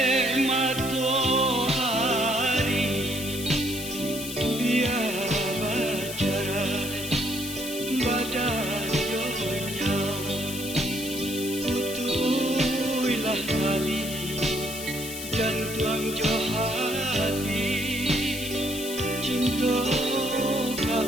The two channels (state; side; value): noise; left; hiss, 8 dB below the sound